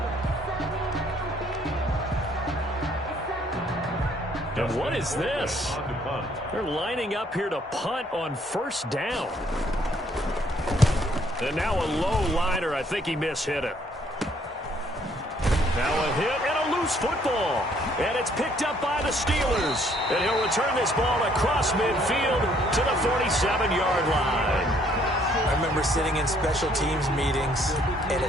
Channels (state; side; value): normal; both; correlation 0.65